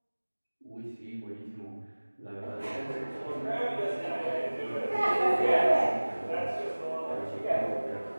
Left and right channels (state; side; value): inverted; both; correlation -1.00